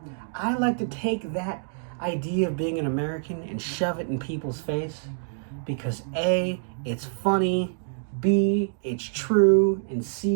I like to take that idea of being an American and shove it in people's face, because A, it's funny, B, it's true, and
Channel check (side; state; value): left; silent; digital silence